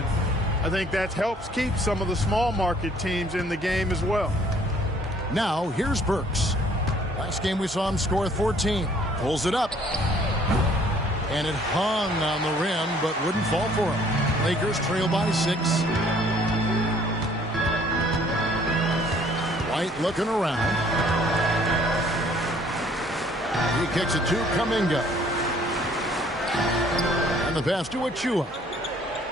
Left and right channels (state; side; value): normal; both; correlation 0.59